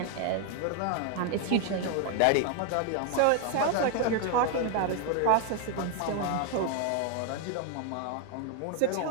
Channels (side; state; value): both; different; correlation 0.00